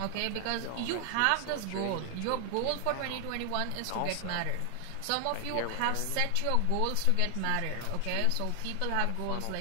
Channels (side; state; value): both; different; correlation 0.00